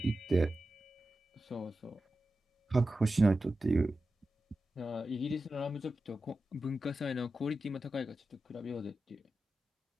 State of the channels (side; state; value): both; normal; correlation 0.92